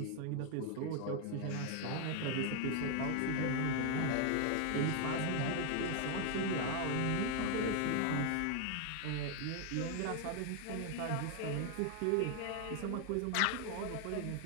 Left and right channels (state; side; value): different; both; correlation 0.00